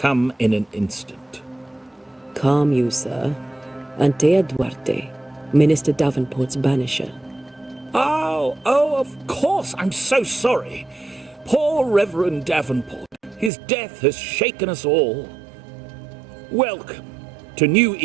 in an instant. Calm you, sir. Antea Duarte, Minister Davenport's banisher. Oh, of course. I'm so sorry. Poor Reverend Davenport. His death has shaken us all. Welcome to New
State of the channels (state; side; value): drops out; left; at 13.5 s